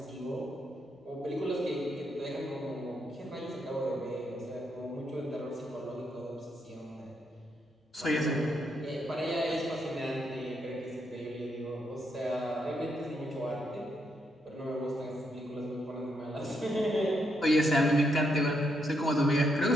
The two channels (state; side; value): normal; both; correlation 0.78